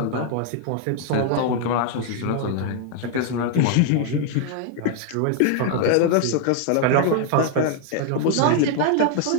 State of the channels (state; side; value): different; both; correlation 0.00